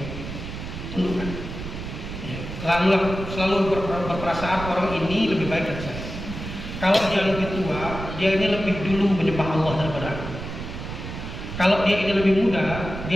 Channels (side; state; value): right; noise; rumble, 8 dB below the sound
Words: tundukkan. Ya, selalu berperasaan orang ini lebih baik dari saya. Kalau dia lebih tua, dia ini lebih dulu menyembah Allah daripada aku. Kalau dia ini lebih muda,